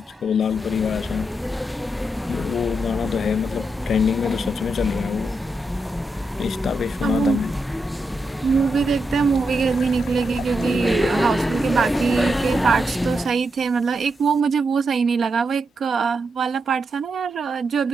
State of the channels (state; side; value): normal; both; correlation 0.84